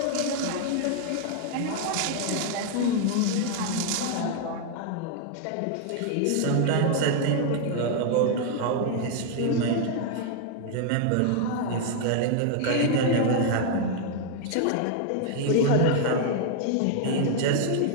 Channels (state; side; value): different; both; correlation 0.00